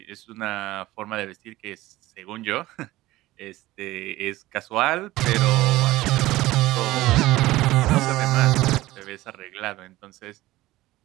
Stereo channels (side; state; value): left; quieter; 17.5 dB